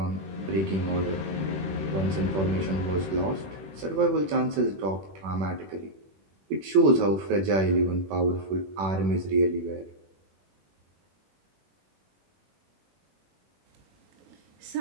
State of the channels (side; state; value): left; late; 21 ms